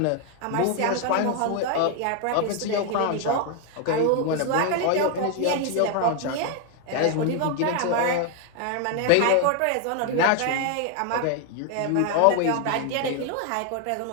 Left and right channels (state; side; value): different; both; correlation 0.00